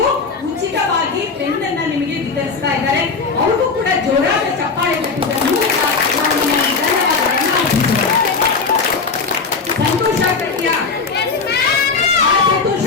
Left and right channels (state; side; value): quieter; right; 4.7 dB